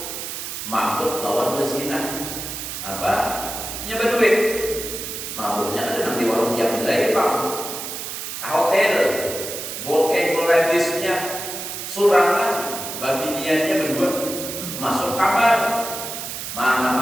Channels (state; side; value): noise; right; hiss, 7 dB below the sound